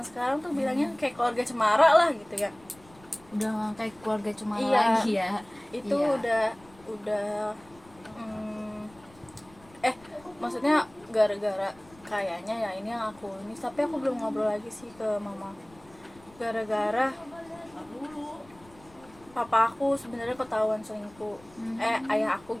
sekarang tuh bilangnya kayak keluarga cemara lah gitu ya. Udah nggak kayak keluarga cuma Iya, lagi ya. itu Iya. udah maksudnya gara-gara kayaknya ya ini yang aku ini, tapi aku belum ngobrol lagi sih ke mama. Gara-gara papa aku sebenarnya ketahuan selingkuh, ayah aku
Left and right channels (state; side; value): noise; left; rumble, 26 dB below the sound